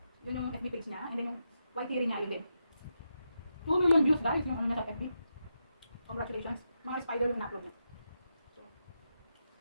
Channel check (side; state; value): both; inverted; correlation -0.85